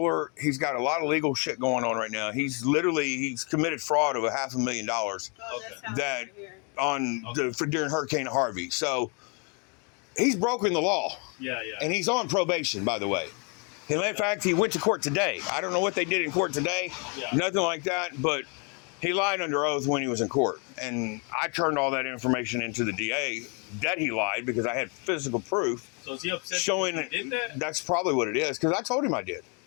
He's got a lot of legal shit going on right now. He's committed fraud of $500,000 during Hurricane Harvey. So he's broken the law. Yeah. And he's on probation, by the way. And in fact, he went to court today. I don't know what they did in court today. Yeah. Nothing like that. But he lied under oath when he was in court. And I turned all that information into the DA that he lied because I had physical proof. So is he upset showing that you did that? That's probably what it is, because I told him I did.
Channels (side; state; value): right; quieter; 35.3 dB